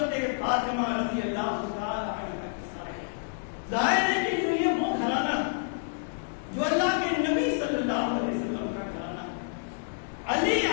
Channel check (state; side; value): silent; right; digital silence